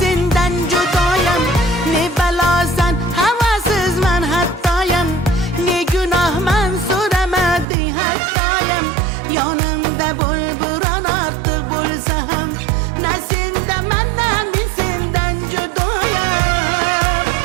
senden judayım. Ne belasan havasızman hattayım, ne günahman so'ramadi hattayım. Yanımda bulburan artık bulsam, ne sendaman ne senden judayım.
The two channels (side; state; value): left; drops out; at 7.7 s